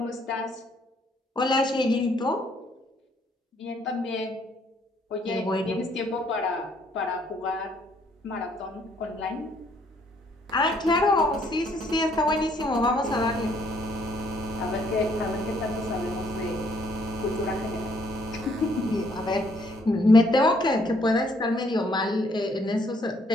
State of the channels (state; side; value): normal; both; correlation 0.67